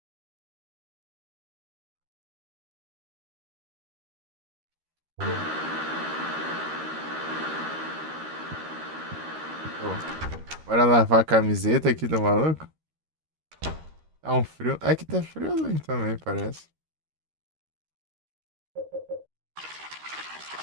Show. Bora lavar a camiseta aqui do maluco? Tá um frio. Aqui tá friozinho também, parece.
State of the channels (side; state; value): left; late; 13 ms